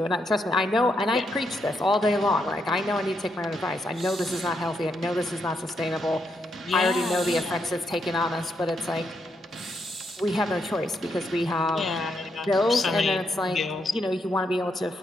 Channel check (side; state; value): both; normal; correlation 0.79